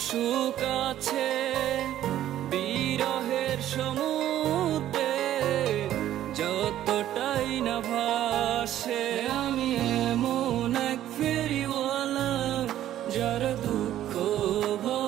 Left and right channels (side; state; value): left; quieter; 12.3 dB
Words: সুখ আছে, বিরহের সমুদ্রে যতটাই না ভাসে। আমি এমন এক ফেরিওয়ালা যার দুঃখ